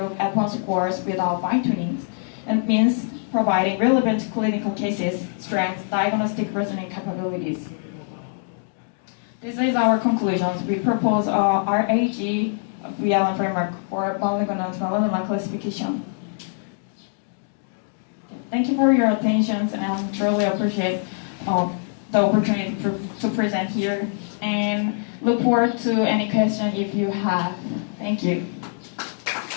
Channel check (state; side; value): silent; right; digital silence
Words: endpoint scores without fine-tuning. It means providing relevant clinical cases, strengths, diagnostic reasoning capabilities. This is our conclusions. We propose a RAG VLM framework for malignant melanoma classification. Thank you for your attention, and I truly appreciate the opportunity to present here, and look forward to any question if you have. Thank you.